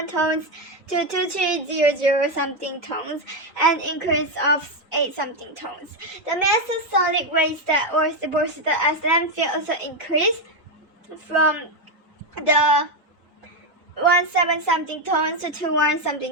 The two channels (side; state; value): both; normal; correlation 0.07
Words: tons to 2300 something tons, an increase of 8 something tons. The mass of solid waste that was deposited as landfill also increased from the 17 something tons to 21